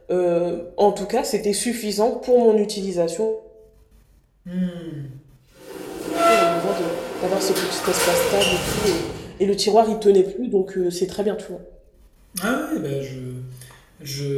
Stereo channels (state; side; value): identical; both; correlation 1.00